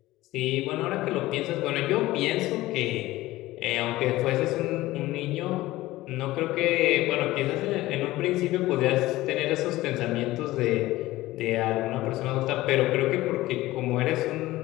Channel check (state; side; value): quieter; right; 17.5 dB